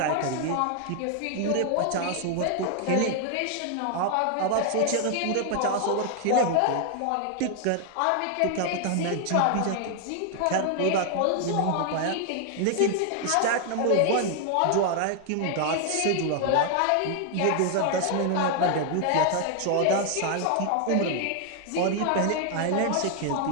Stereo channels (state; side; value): different; both; correlation 0.00